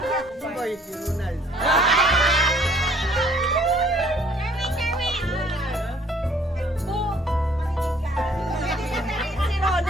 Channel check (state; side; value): normal; both; correlation 0.59